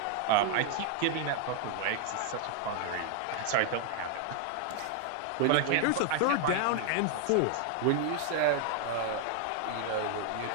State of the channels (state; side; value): different; both; correlation 0.00